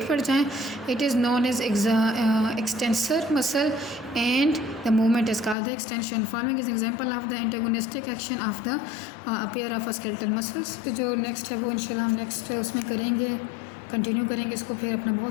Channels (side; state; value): right; drops out; at 5.6 s